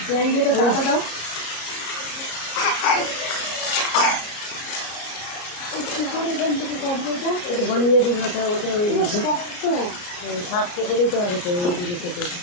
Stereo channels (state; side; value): late; right; 33 ms